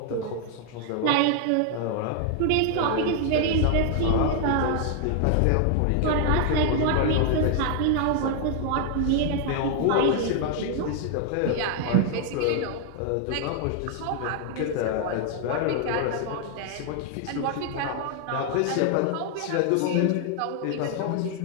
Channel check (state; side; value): different; both; correlation 0.00